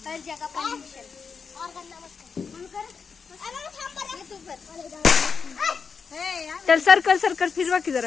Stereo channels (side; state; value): right; quieter; 5.7 dB